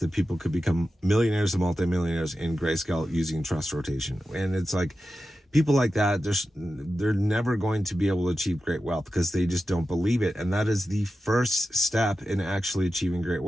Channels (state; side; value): normal; both; correlation 0.92